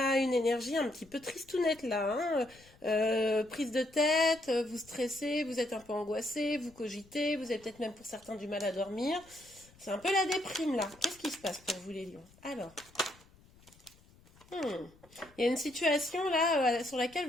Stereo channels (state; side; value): noise; left; rumble, 27 dB below the sound